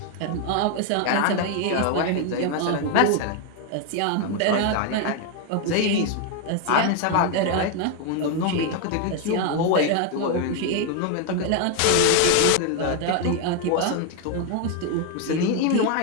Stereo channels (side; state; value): both; different; correlation 0.01